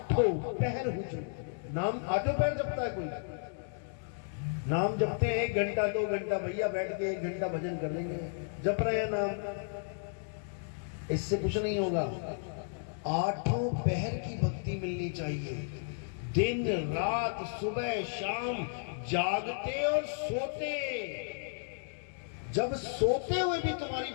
पहर हुजूर। नाम आठों पहर जपता है कोई? नाम जपते हैं 1 घंटा 2 घंटा, भैया बैठ के 1 घंटा भजन कर लेंगे, जप रहे हैं नाम, इससे कुछ नहीं होगा। आठों पहर की भक्ति मिलनी चाहिए, दिन रात सुबह शाम, जागते और सोते। जब सोते हुए भी तुम्हारी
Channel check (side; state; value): right; silent; digital silence